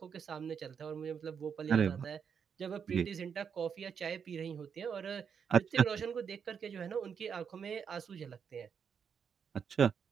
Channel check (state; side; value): quieter; left; 7.0 dB